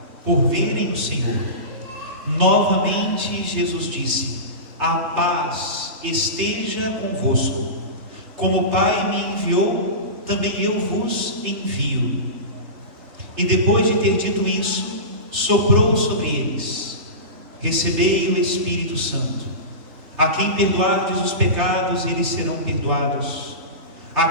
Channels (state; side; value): late; left; 3.8 ms